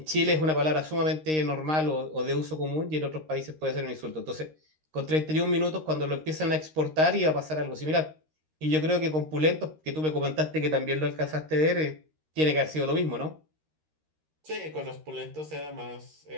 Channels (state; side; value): late; left; 13 ms